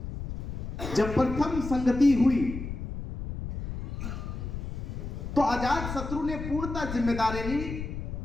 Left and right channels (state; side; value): noise; left; rumble, 6 dB below the sound